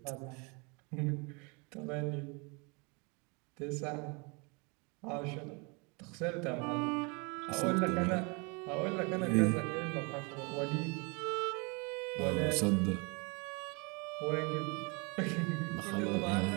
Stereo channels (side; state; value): left; quieter; 30.7 dB